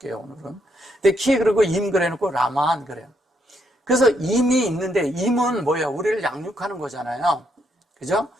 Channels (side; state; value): both; normal; correlation 0.75